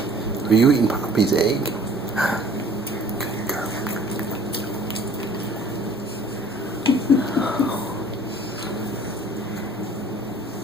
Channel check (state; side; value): normal; both; correlation 0.51